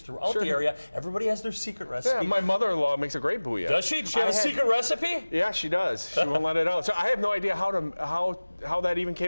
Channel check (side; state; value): both; inverted; correlation -1.00